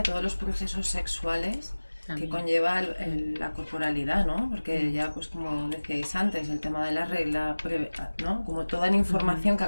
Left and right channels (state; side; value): inverted; both; correlation -1.00